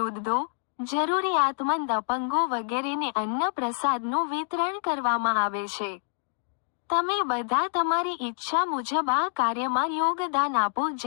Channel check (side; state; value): right; silent; digital silence